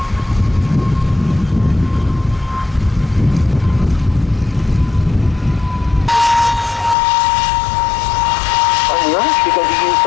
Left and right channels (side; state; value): right; drops out; at 7.0 s